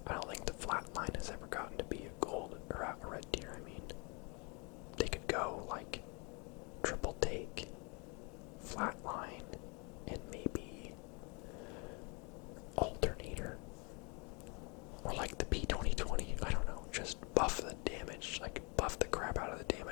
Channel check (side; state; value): right; quieter; 31.6 dB